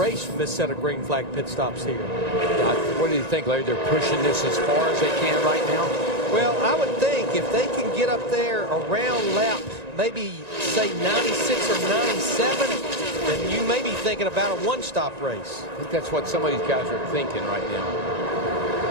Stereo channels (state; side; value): late; left; 1.9 ms